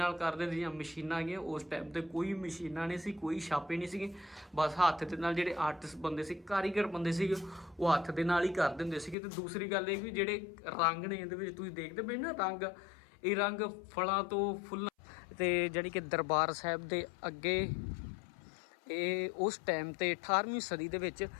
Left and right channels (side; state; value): right; drops out; at 9.2 s